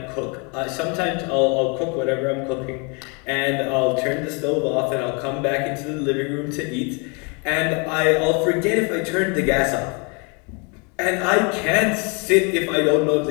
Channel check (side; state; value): right; quieter; 33.0 dB